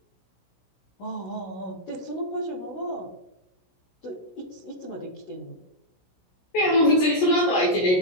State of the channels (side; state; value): right; late; 16 ms